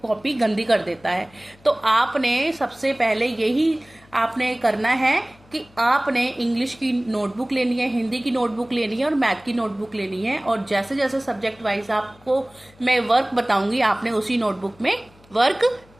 कॉपी गंदी कर देता है। तो आपने सबसे पहले यही आपने करना है कि आपने इंग्लिश की नोटबुक लेनी है, हिंदी की नोटबुक लेनी है और मैथ की नोटबुक लेनी है। और जैसे जैसे सब्जेक्ट वाइज आपको मैं वर्क बताऊंगी आपने उसी नोटबुक में वर्क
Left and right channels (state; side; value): noise; left; hum, 28 dB below the sound